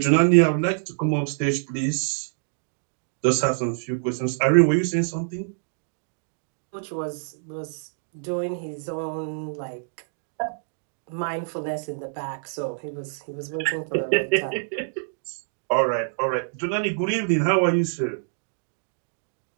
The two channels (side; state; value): left; silent; digital silence